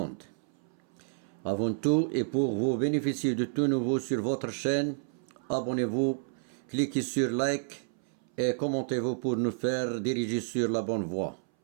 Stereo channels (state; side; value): silent; left; 58 dB below the other